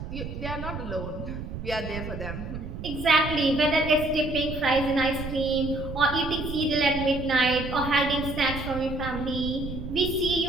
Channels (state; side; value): noise; right; rumble, 8 dB below the sound